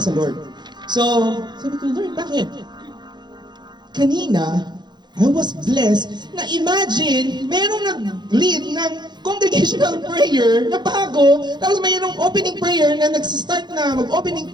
sa Lord. So, sabi ko, Lord, bakit? Kanina, I was blessed na imagine, merong nag-lead ng congregational prayer na bago, tapos mayroong opening prayer na nagsistart na mag-opening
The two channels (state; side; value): late; left; 0.21 ms